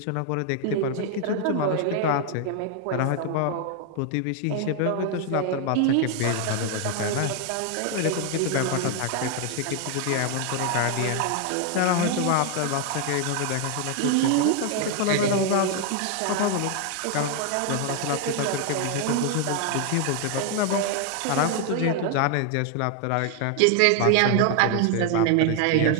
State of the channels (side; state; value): both; different; correlation 0.00